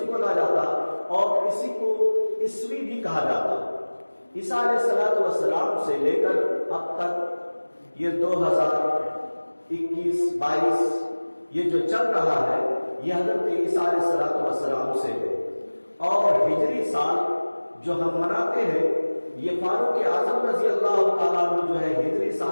بولا جاتا اور اسی کو عیسوی بھی کہا جاتا۔ عیسیٰ علیہ الصلوۃ والسلام سے لے کر اب تک یہ 2021-22 یہ جو چل رہا ہے، یہ حضرت عیسیٰ علیہ الصلوۃ والسلام سے ہے۔ اور ہجری سال جو ہم مناتے ہیں، یہ فاروق اعظم رضی اللہ تعالیٰ عنہ جو ہے ہجری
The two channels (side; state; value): both; inverted; correlation -1.00